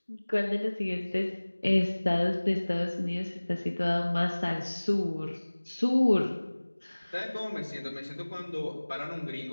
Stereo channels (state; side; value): inverted; both; correlation -1.00